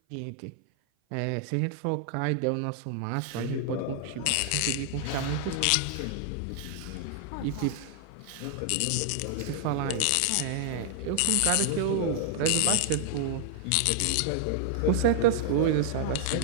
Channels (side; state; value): both; different; correlation -0.01